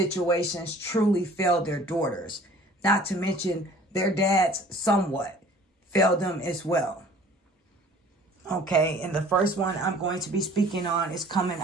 truly failed their daughters. Not to mention their dads somewhat failed them as well. Okay, and the first one I'm going to be speaking on is coming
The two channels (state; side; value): normal; both; correlation 0.50